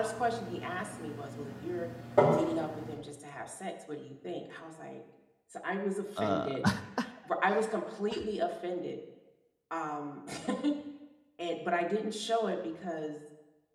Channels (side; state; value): both; identical; correlation 1.00